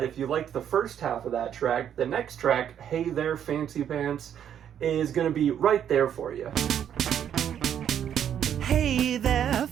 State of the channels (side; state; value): left; quieter; 9.4 dB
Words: if you liked the first half of that track, the next track, Hey There Fancy Pants, is gonna be right there for you. Hey there,